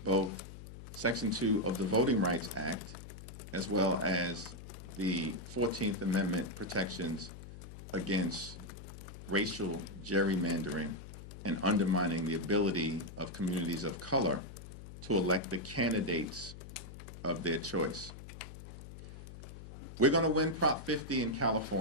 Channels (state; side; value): noise; left; hum, 13 dB below the sound